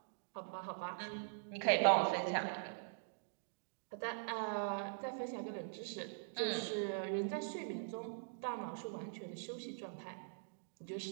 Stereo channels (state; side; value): silent; left; digital silence